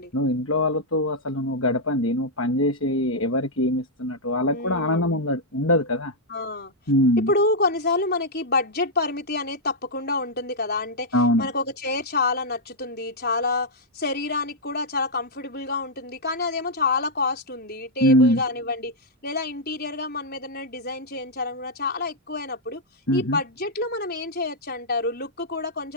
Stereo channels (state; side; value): normal; both; correlation -0.05